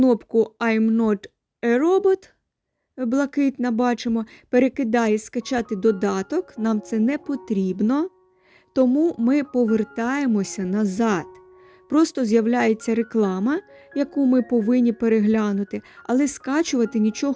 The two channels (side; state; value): both; identical; correlation 1.00